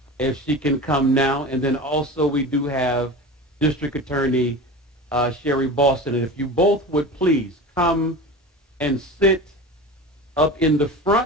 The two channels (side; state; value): both; normal; correlation 0.31